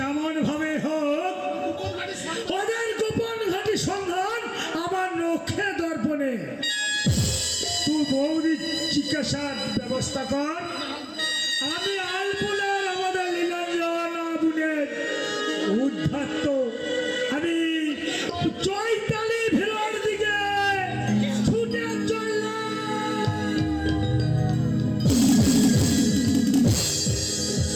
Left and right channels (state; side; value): identical; both; correlation 1.00